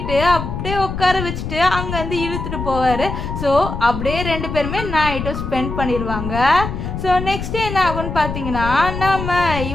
அப்படியே உட்கார வச்சுட்டு அங்கேருந்து இழுத்துட்டு போவார். ஸோ அப்படியே ரெண்டு பேருமே நைட்டும் ஸ்பெண்ட் பண்ணிடுவாங்க. ஸோ நெக்ஸ்ட் என்ன ஆகும்னு பார்த்தீங்கன்னா, நம்ம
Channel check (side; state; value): left; noise; rumble, 5 dB below the sound